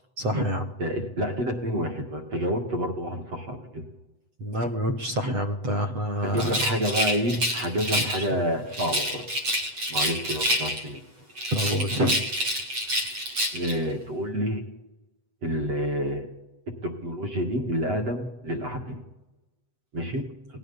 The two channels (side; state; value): left; late; 8.0 ms